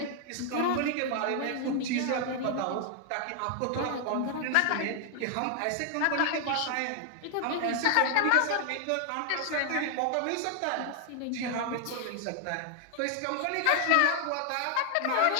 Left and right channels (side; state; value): both; different; correlation 0.00